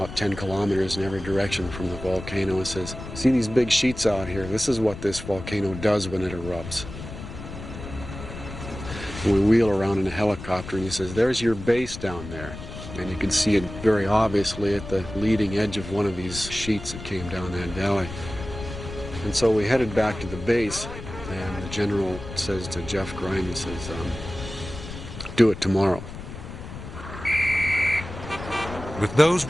10 kilometers in every direction from the volcano, and says, "See these big sheets out here? This is what this volcano does when it erupts." And we wheel around in a helicopter, and he says, "There's your base down there." And you can see it very obviously at the leading edge of one of these sheets that came down that valley. And so we headed back to the base, and the general says to Jeff Grimes, he says, "Do it tomorrow." With those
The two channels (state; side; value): noise; left; rumble, 11 dB below the sound